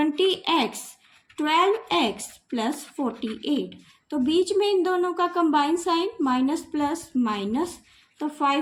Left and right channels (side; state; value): both; identical; correlation 1.00